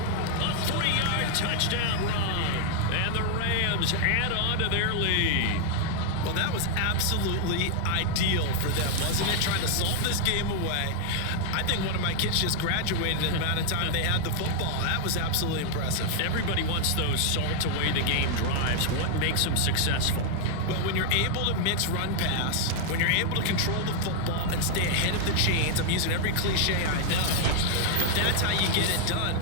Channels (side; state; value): both; different; correlation 0.00